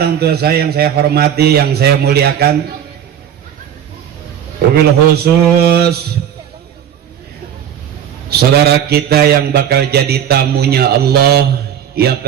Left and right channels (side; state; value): left; quieter; 9.6 dB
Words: tua saya yang saya hormati, yang saya muliakan, wabil khusus saudara kita yang bakal jadi tamunya Allah, yang